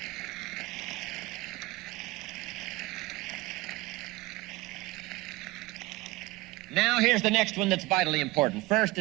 Now here's the next one that's vitally important. First,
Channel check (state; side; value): quieter; left; 20.2 dB